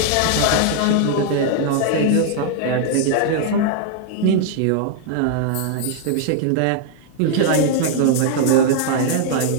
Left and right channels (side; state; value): both; different; correlation 0.00